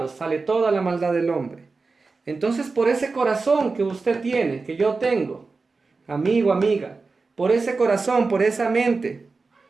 sale toda la maldad del hombre. Entonces, por ese corazón que usted tiene, que yo tengo, amigo, amiga, por ese corazón, por esa mente,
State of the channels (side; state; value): left; quieter; 4.1 dB